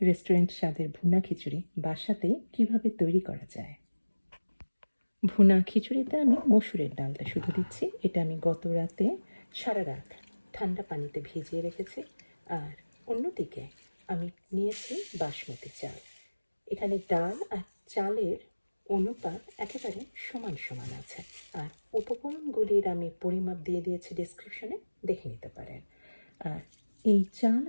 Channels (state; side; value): inverted; both; correlation -1.00